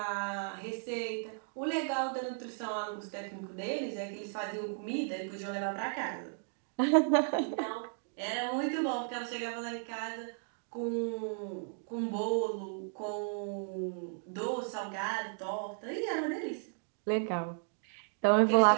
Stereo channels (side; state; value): left; silent; digital silence